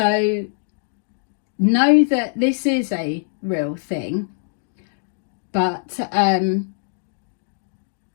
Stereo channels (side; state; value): right; silent; digital silence